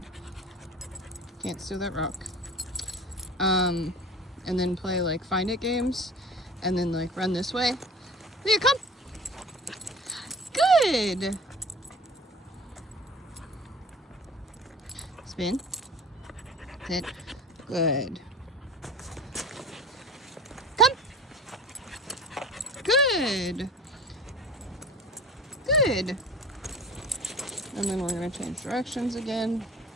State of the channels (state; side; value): normal; both; correlation 0.40